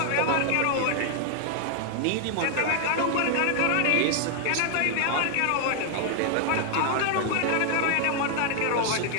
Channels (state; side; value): different; both; correlation 0.00